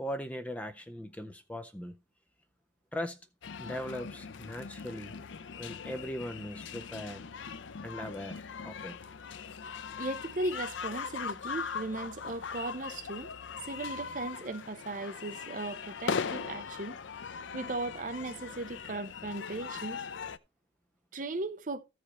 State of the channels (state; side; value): normal; both; correlation 0.19